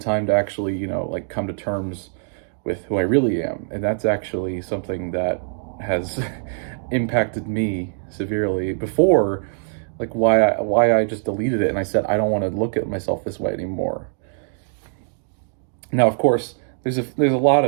to actually, like, come to terms with who I really am. And that's actually something that has impacted me severely before, like, why I just deleted it. And I said, I don't want to look at myself this way anymore. Now, of course, there's a lot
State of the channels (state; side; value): silent; left; digital silence